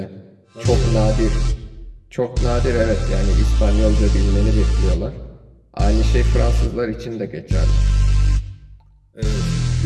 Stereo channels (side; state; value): both; identical; correlation 1.00